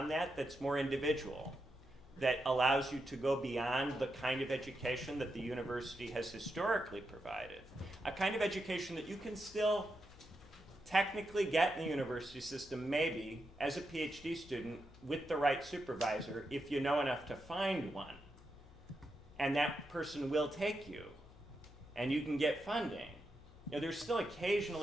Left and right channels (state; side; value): noise; left; hum, 21 dB below the sound